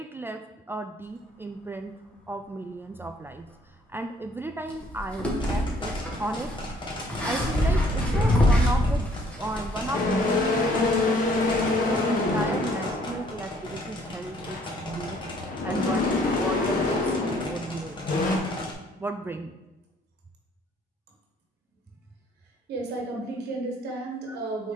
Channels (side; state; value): both; normal; correlation 0.61